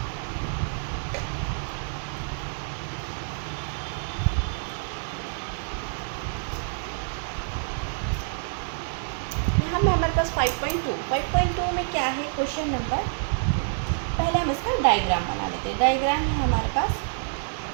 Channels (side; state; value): left; silent; digital silence